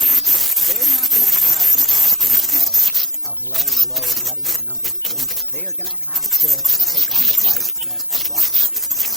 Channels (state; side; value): normal; both; correlation 0.73